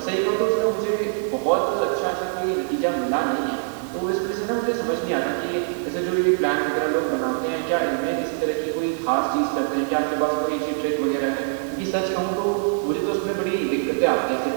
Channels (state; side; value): silent; left; digital silence